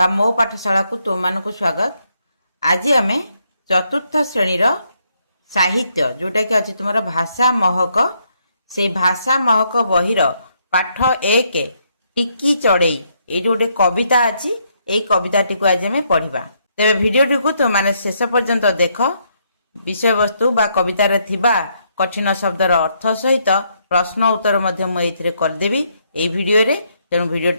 मो पाठशाला को तुम मानक स्वागत। आज आम चतुर्थ श्रेणी साहित्य जोटा कि अच्छी तुम भाषा महक से भाषा महक बहिर पाठ एक टिकी चढ़ई ये गोटे कविता अच्छी यही कविता टी को आज आम पढ़ा। तेरे भिडियोटी को तुम मैंने शेष पर्यंत देख विषय वस्तु बा कवितार थिबा कठिन शब्दर अर्थ सहित प्रश्न उत्तर मुझे करदेवी ये भिडियो रे। तेणु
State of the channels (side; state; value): both; inverted; correlation -0.74